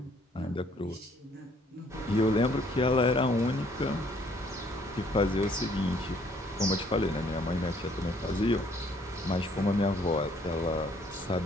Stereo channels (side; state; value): both; normal; correlation 0.63